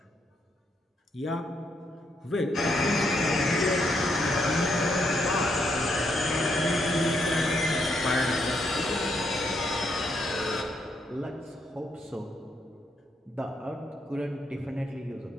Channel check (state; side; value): normal; both; correlation 0.76